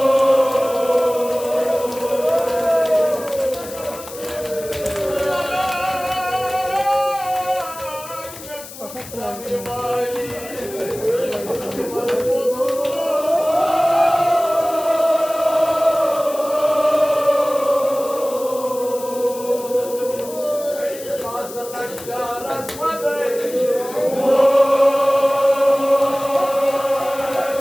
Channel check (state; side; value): noise; left; hiss, 14 dB below the sound